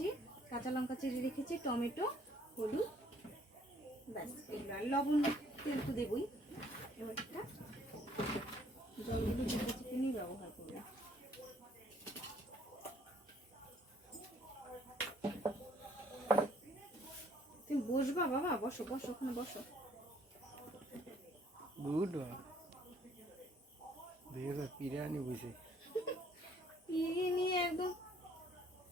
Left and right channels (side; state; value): both; normal; correlation 0.62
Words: কাঁচা লঙ্কা চিড়ে রেখেছি, টমেটো, হলুদ, ব্যাস এগুলো। আর লবণ, তেল তো দেবই। এবার একটা জলগুলো চিকেনই ব্যবহার করবো। তুমি বসবা বাবা? বসো বসো, ওখানে বসো। গুড বিরিয়ানি বুঝে বিরিয়ানি একদম